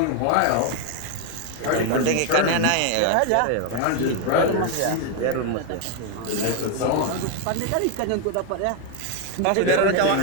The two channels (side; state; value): both; different; correlation 0.01